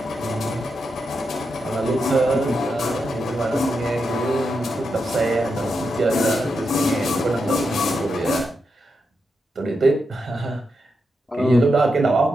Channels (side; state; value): both; normal; correlation 0.85